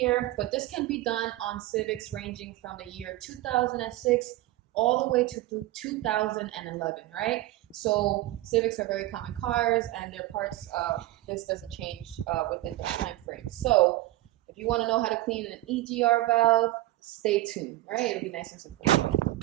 but this can be done on Civics ranging from the year 2006 all the way to 2011, right? So Civics are very common cars and their parts, this doesn't change within the time frame. So if you want to know how to clean an EGR valve, stay tuned, right? It'll be nice and simple.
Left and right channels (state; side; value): quieter; left; 16.9 dB